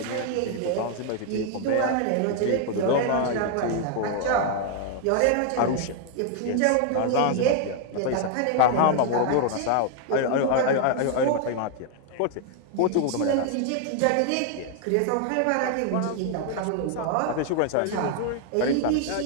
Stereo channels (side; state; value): both; different; correlation 0.00